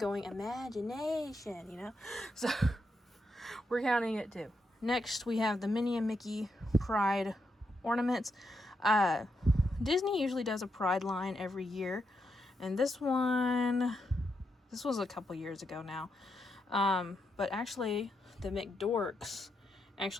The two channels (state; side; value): normal; both; correlation 0.82